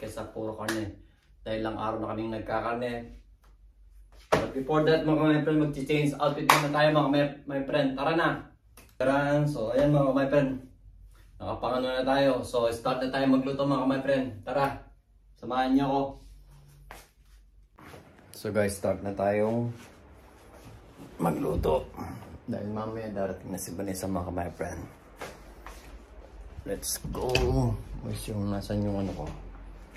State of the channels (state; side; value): identical; both; correlation 1.00